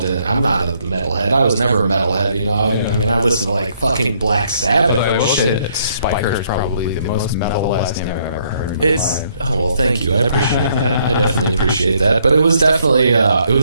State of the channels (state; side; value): inverted; both; correlation -0.69